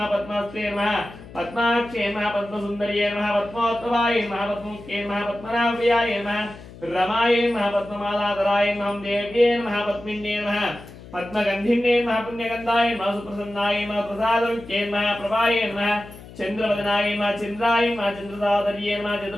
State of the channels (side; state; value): left; noise; hum, 17 dB below the sound